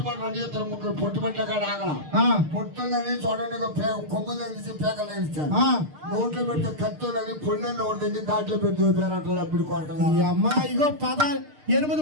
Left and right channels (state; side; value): late; left; 6.6 ms